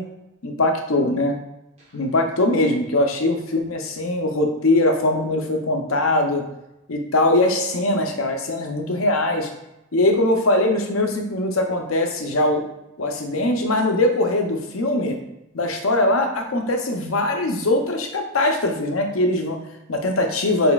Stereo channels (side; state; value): both; normal; correlation -0.06